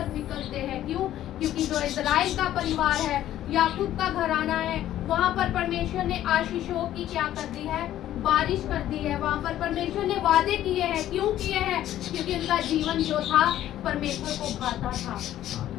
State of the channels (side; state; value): right; quieter; 12.7 dB